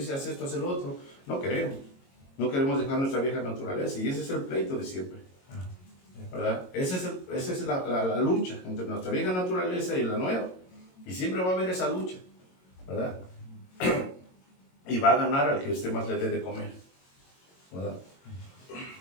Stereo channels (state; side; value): late; right; 22 ms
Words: haz esto, haz el otro, no queremos. No queremos dejar nuestra vieja naturaleza. Y ese es el pleito de siempre, ¿verdad? Esa es la lucha entre nuestra vieja naturaleza y la nueva. Y siempre va a haber esa lucha, ¿verdad? Y va a ganar al que usted más le dé de comer, ¿verdad?